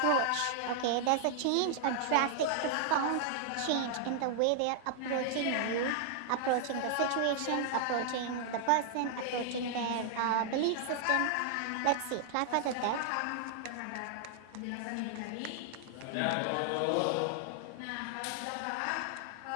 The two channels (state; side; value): different; both; correlation 0.00